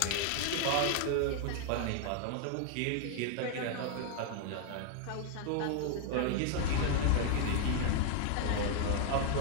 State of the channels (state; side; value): different; both; correlation 0.00